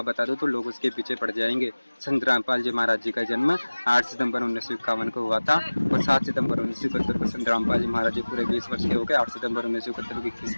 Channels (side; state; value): both; inverted; correlation -1.00